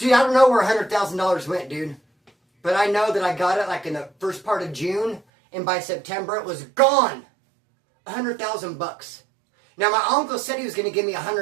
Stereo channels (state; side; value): drops out; left; at 5.2 s